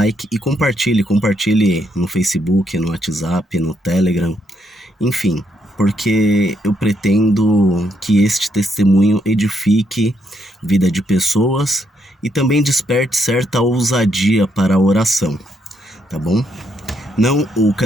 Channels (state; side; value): normal; both; correlation 0.76